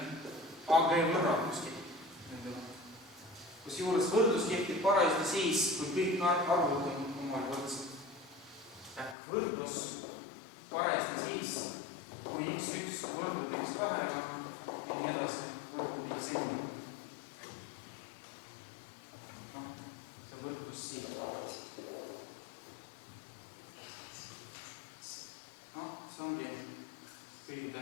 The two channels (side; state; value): right; drops out; at 9.2 s